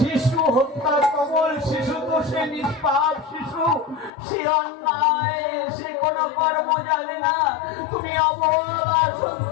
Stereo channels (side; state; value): right; drops out; at 4.1 s